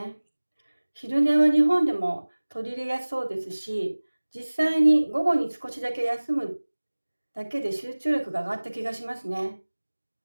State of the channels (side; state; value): both; inverted; correlation -1.00